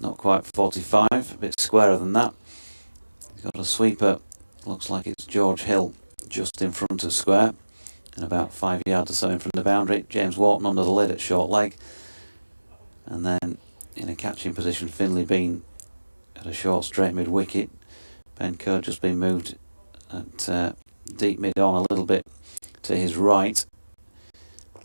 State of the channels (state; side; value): inverted; both; correlation -1.00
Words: not quite 45, a bit squarer than that. He's got a sweeper, looks like it's George Hill, just in front of square, and about 5 yards or so in front of the boundary. James Wharton under the lid at short leg. And then in a catching position, Finlay Bean at a short straight mid-wicket. Ben Kerr just been moved at deep mid on, a little bit to his right,